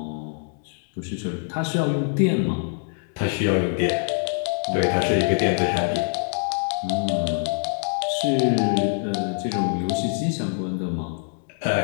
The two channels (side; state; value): right; silent; digital silence